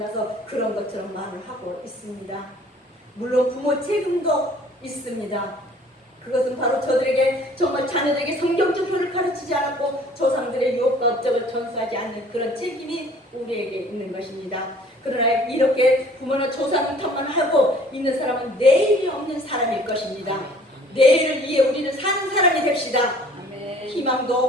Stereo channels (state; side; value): normal; both; correlation 0.53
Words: 그런 것처럼 말을 하고 있습니다. 물론 부모 책임도 있습니다. 그것은 바로 저들에게 정말 자녀들에게 성경적 표를 가르치지 않았고 조상들의 유업과 업적을 전수하지 않는 그런 책임이 우리에게 있는 것입니다. 그러나 이렇게 부모나 조상 탓만 하고 있는 사람은 내일이 없는 사람일 것입니다. 내일을 위해 우리는 사는 사람이 됩시다.